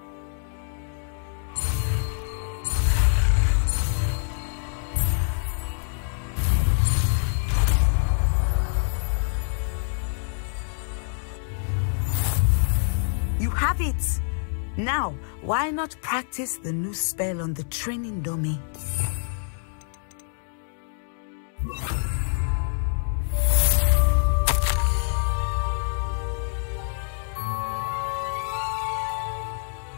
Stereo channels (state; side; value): silent; right; digital silence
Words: You have it! Now, why not practice the new spell on the training dummy?